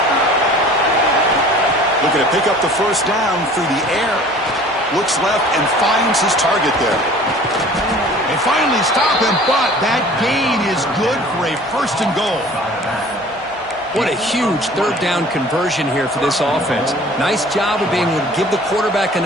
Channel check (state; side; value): normal; both; correlation 0.47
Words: Looking to pick up the first down through the air. Looks left and finds his target there. They finally stop him, but that gain is good for a 1st and goal. What a huge 3rd down conversion here for this offense. Nice job of being able to give the quarterback